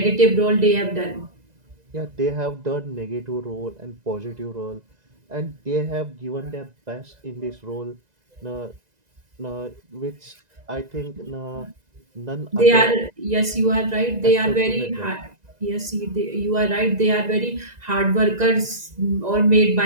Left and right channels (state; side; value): late; left; 2.0 ms